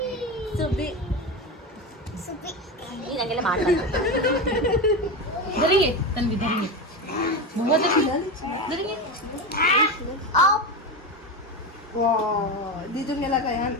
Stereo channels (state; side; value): normal; both; correlation 0.19